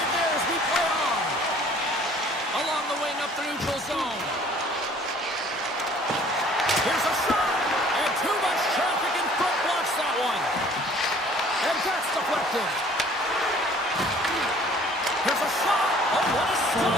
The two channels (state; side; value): normal; both; correlation 0.54